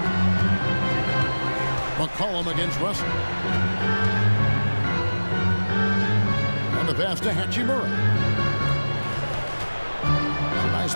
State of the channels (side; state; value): both; inverted; correlation -1.00